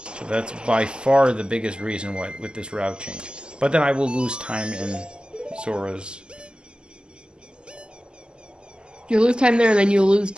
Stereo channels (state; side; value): late; left; 0.048 ms